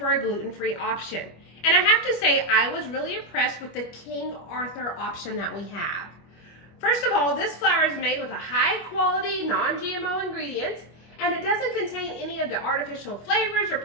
a gluten-free option. And I have to say, I was really impressed with the King Arthur option that we have. First of all, this flour is made with a high-quality, non-GMO ingredients, and it doesn't contain any of the artificial flavors or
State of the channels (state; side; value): late; right; 25 ms